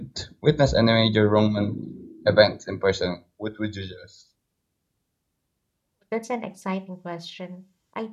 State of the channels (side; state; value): both; identical; correlation 1.00